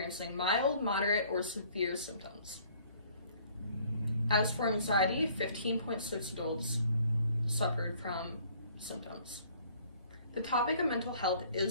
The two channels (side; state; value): both; inverted; correlation -0.58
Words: mild, moderate, or severe symptoms. As for anxiety, 15.6 adults suffered from symptoms. The topic of mental health